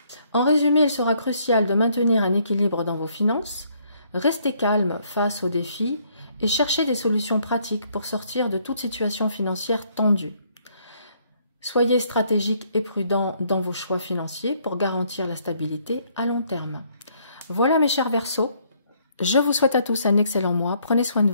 En résumé, il sera crucial de maintenir un équilibre dans vos finances, rester calme face aux défis et chercher des solutions pratiques pour sortir de toute situation financière tendue. Soyez stratégique et prudent dans vos choix financiers pour garantir la stabilité à long terme. Voilà mes chers Verseaux, je vous souhaite à tous un excellent mois, prenez soin de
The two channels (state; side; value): inverted; both; correlation -0.67